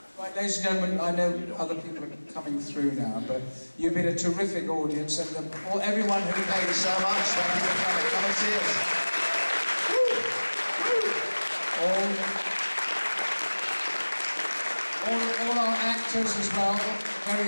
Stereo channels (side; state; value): both; inverted; correlation -1.00